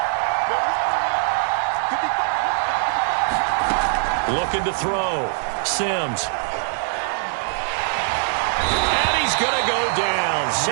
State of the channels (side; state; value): left; silent; digital silence